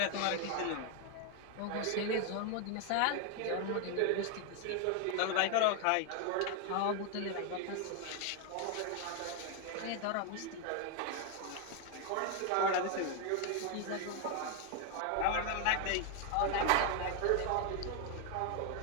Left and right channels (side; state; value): both; different; correlation 0.00